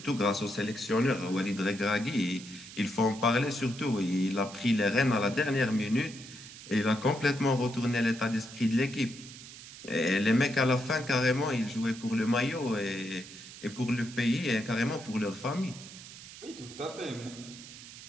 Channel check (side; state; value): right; noise; hiss, 15 dB below the sound